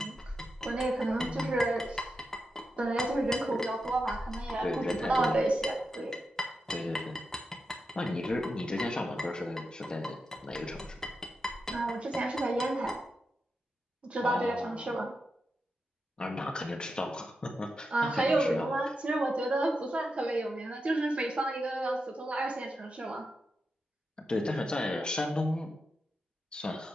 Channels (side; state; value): both; normal; correlation 0.88